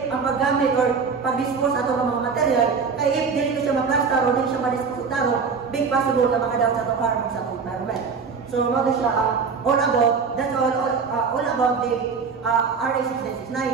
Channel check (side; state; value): left; quieter; 5.4 dB